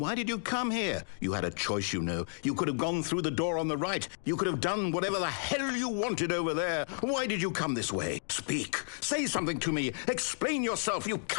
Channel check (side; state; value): right; silent; digital silence